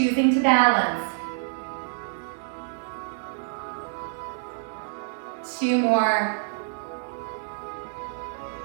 to balance. 2 more.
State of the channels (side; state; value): left; silent; digital silence